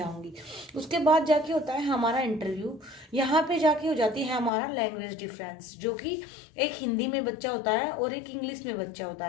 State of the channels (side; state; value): right; drops out; at 4.5 s